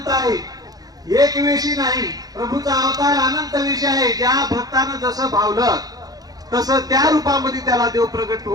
आहे. एक वेशी नाही, प्रभूचा अवतार अनंत वेश आहे. ज्या भक्तानं जसं भावलं तसं त्या रूपामध्ये त्याला देव प्रगट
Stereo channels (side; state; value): left; late; 0.18 ms